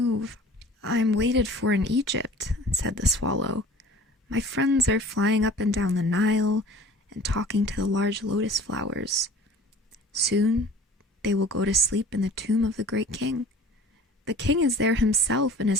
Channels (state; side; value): normal; both; correlation 0.44